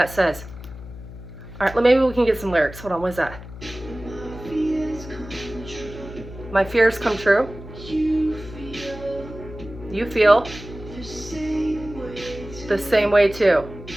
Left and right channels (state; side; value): noise; left; hum, 14 dB below the sound